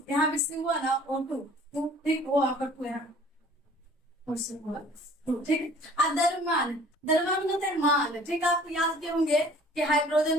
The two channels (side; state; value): both; normal; correlation 0.51